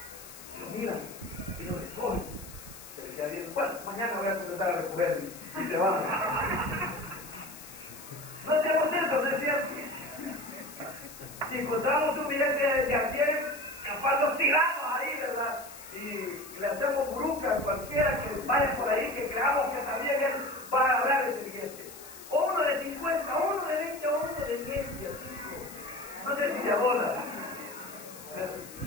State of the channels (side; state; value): left; noise; hiss, 16 dB below the sound